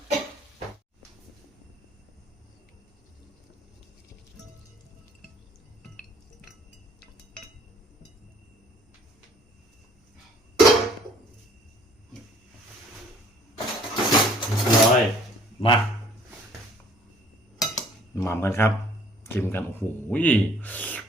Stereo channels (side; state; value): both; normal; correlation 0.57